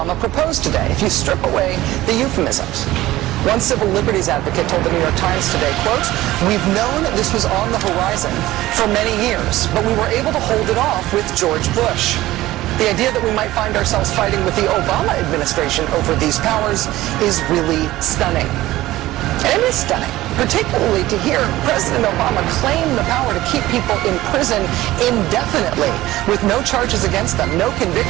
proposed today, if you strip away the euphemisms. One civil liberties advocate told the New York Times today, quote, "We've known this was on the horizon for many years, but we were able to hold it off with George Bush." The idea that we might find ourselves fighting with the Obama administration over these powers is really stunning. And it is stunning, particularly to hear President Obama claim the power to keep people in prison indefinitely with no charges against them, no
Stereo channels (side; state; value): left; quieter; 16.5 dB